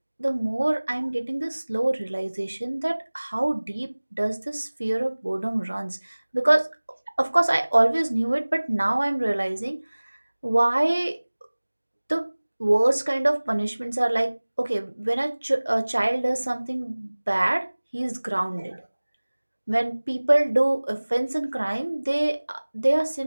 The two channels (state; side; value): inverted; both; correlation -1.00